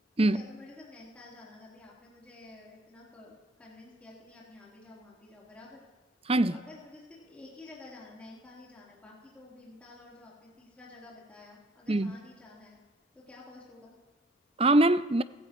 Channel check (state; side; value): normal; both; correlation 0.60